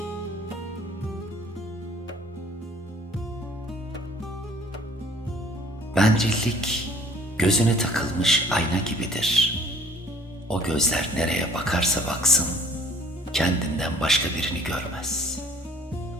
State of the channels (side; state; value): both; normal; correlation 0.54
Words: Bencillik gözüne takılmış ayna gibidir. O gözler nereye bakarsa baksın, kendinden başka birini görmez.